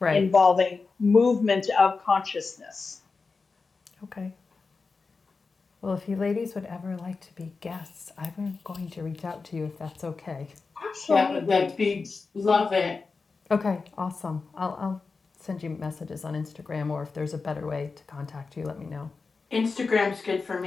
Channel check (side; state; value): right; quieter; 4.4 dB